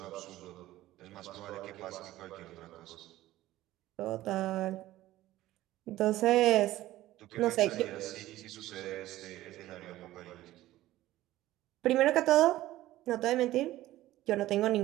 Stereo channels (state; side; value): quieter; left; 15.6 dB